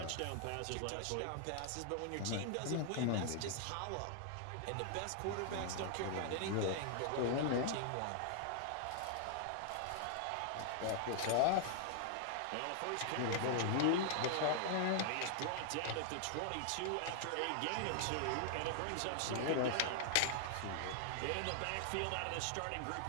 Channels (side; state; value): both; different; correlation -0.01